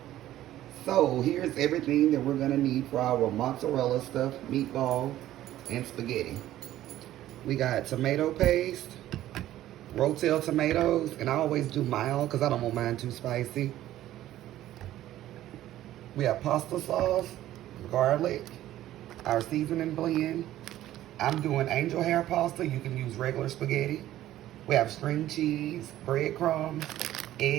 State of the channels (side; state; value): left; quieter; 13.7 dB